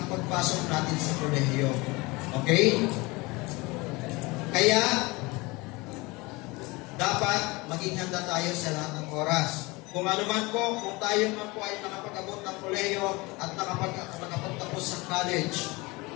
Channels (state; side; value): quieter; right; 24.0 dB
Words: pagpasok natin sa kolehiyo. Okay? Kaya, dapat maging handa tayo sa lahat ng oras. Kung ano man po, kung tayo man po ay nakapag-abot ng kolehiyo at nakapagtapos sa college